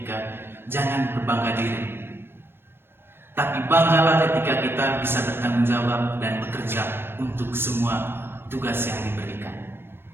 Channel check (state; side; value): late; left; 0.11 ms